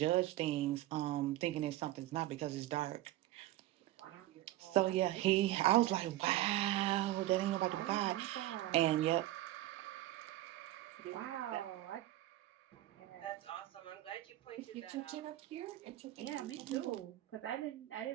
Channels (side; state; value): left; quieter; 15.5 dB